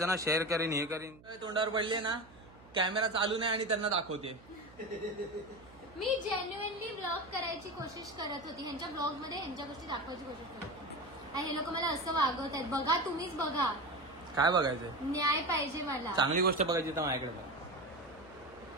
ना. शेअर करीन हे करीन. तोंडावर पडले ना कॅमेरा चालू नाही आणि त्यांना दाखवते. मी जेन्युअनली ब्लॉग करायची कोशिश करत होती. ह्यांच्या ब्लॉग मध्ये ह्यांच्या गोष्टी दाखवायची कोशिश करत होती. आणि हे लोक मला असं वागवत आहेत. बघा तुम्हीच बघा. काय बघायचंय? न्याय पाहिजे मला. चांगली गोष्ट बघायची तर माझ्याकडे बघ.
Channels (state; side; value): noise; right; hum, 23 dB below the sound